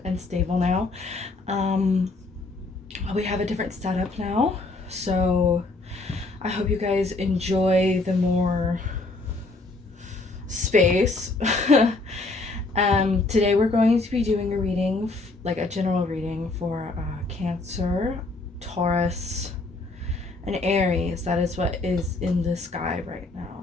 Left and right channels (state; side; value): quieter; right; 3.3 dB